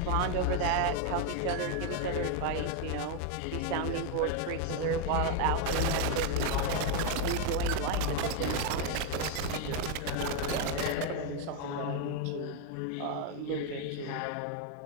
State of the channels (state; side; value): different; both; correlation 0.01